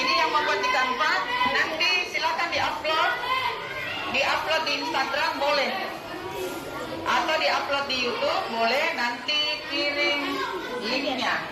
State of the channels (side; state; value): both; identical; correlation 1.00